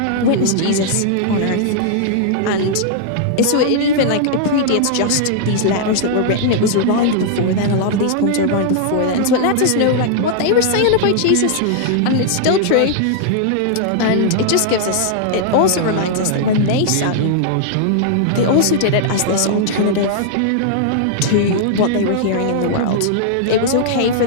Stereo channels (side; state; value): both; different; correlation -0.01